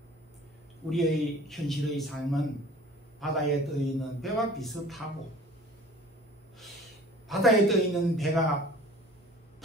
우리의 현실의 삶은 바다에 떠 있는 배와 비슷하고, 바다에 떠 있는 배가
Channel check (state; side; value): normal; both; correlation 0.46